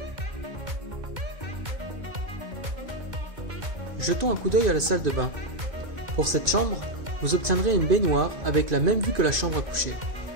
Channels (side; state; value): left; late; 2.1 ms